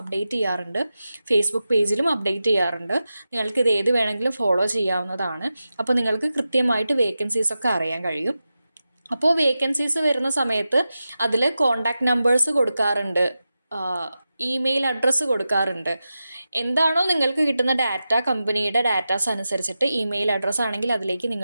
അപ്ഡേറ്റ് ചെയ്യാറുണ്ട്. ഫേസ്ബുക്ക് പേജിലും അപ്ഡേറ്റ് ചെയ്യാറുണ്ട്. നിങ്ങൾക്ക് ഇത് ഏത് വേണമെങ്കിലും ഫോളോ ചെയ്യാവുന്നതാണ്. അപ്പോൾ നിങ്ങൾക്ക് കൃത്യമായിട്ട് വേക്കൻസീസ് ഒക്കെ അറിയാൻ കഴിയും. അപ്പോൾ വേക്കൻസീസ് വരുന്ന സമയത്ത് അതിൽ കോണ്ടാക്ട് നമ്പേഴ്സ് കൊടുക്കാറുണ്ട്. ഇമെയിൽ അഡ്രസ്സ് കൊടുക്കാറുണ്ട്. എന്താണോ നിങ്ങൾക്ക് കിട്ടുന്ന ഡാറ്റ, കമ്പനിയുടെ ഡാറ്റാസ് അനുസരിച്ചിട്ട് ഇമെയിൽ അഡ്രസ്സ് ആണെങ്കിൽ അതിലേക്ക്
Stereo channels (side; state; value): both; inverted; correlation -0.92